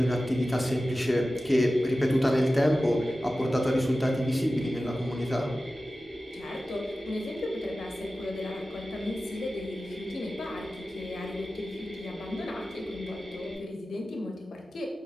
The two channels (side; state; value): both; normal; correlation 0.95